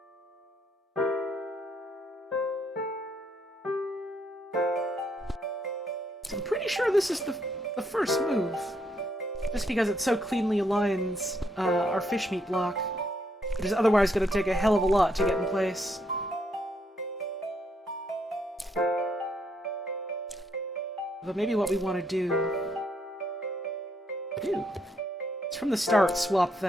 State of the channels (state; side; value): normal; both; correlation 0.74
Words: I'm pretty sure this is the first move. Just because it so cleanly aligns our fish meat block. It is otherwise going to take a hell of a lot to get in place. But maybe what we want to do... Ew. It's from the start, swap